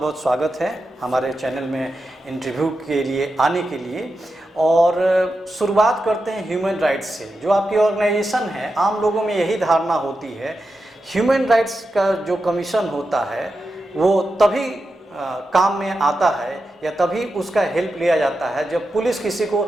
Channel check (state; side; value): normal; both; correlation 0.89